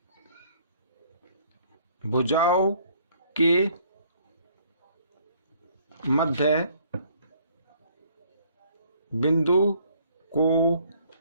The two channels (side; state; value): both; inverted; correlation -0.61